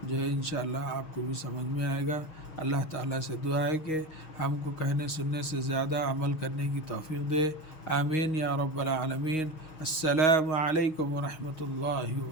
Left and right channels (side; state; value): right; late; 6.3 ms